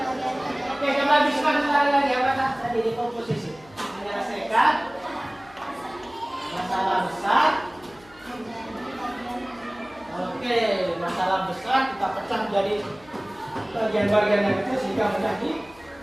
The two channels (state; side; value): noise; left; hum, 26 dB below the sound